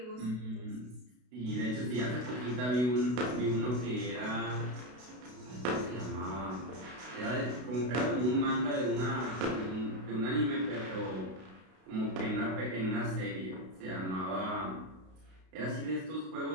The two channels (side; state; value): left; late; 32 ms